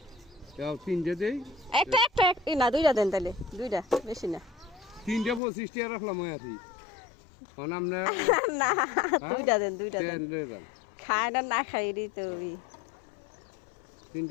তিনটা দেই। একটা একটা না, দুইটা দেন তাহলে, দুইটা, বেশি না। 3টা 25 টাকা রাখলাম আছি আপনার না, দুইটা দেন, দুইটা দেন। খায় না, না খাই তো।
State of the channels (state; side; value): drops out; right; at 5.4 s